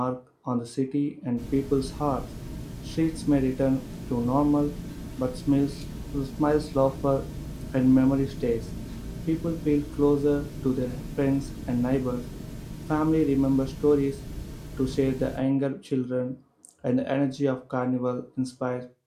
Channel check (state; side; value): identical; both; correlation 1.00